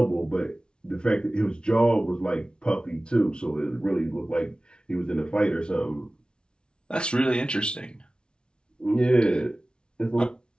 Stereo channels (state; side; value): late; right; 0.055 ms